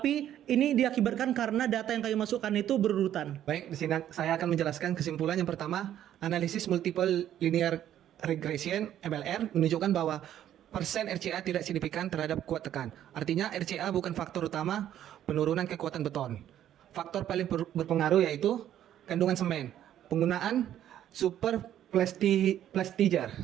ini diakibatkan karena data yang kami masukkan itu berurutan. Baik, di sini saya akan menjelaskan kesimpulan yang pertama. Analisis multiple linear regression (MLR) menunjukkan bahwa persen RCA tidak signifikan terhadap kuat tekan. Artinya RCA bukan faktor utama penurunan kekuatan beton. Faktor paling berpengaruh yaitu kandungan semen, penggunaan super plasticizer.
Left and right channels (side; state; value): left; quieter; 11.3 dB